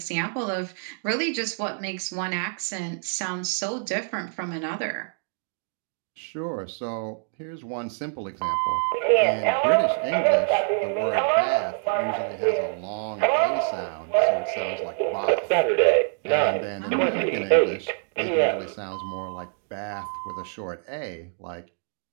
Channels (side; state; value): left; silent; 61 dB below the other